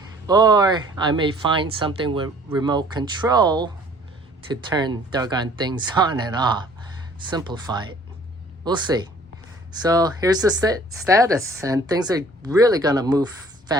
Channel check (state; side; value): normal; both; correlation 0.54